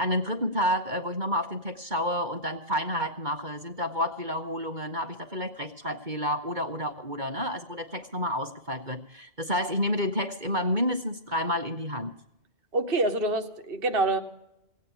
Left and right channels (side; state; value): left; late; 2.2 ms